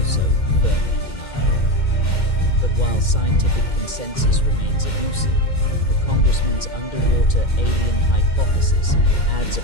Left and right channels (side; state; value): right; late; 2.1 ms